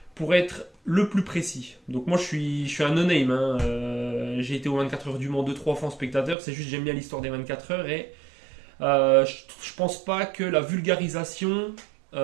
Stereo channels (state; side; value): drops out; left; at 6.4 s